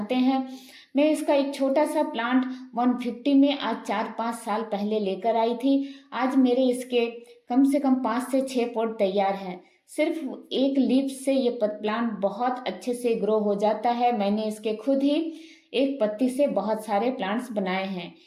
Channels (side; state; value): both; identical; correlation 1.00